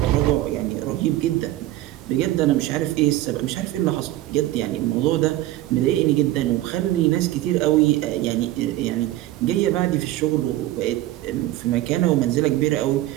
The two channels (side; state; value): left; quieter; 15.4 dB